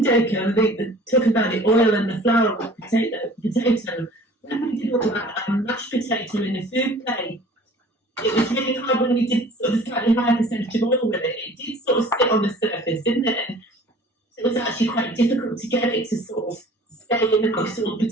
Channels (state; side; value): normal; both; correlation 0.48